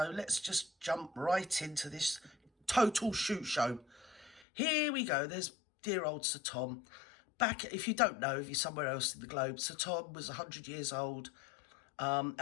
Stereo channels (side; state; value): right; drops out; at 4.5 s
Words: let's just jump right into this total shoot show. Here we go. There's dear old Sir Tom. Back, if you don't know, if you're somewhere else in the globe, Sir Tom was 100 years old,